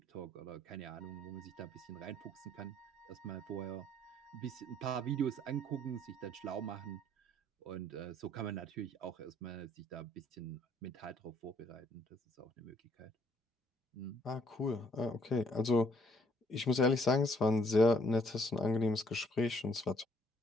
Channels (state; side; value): normal; both; correlation 0.65